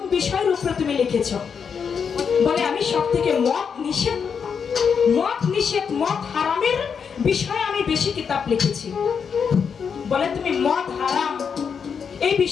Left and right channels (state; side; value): quieter; right; 6.5 dB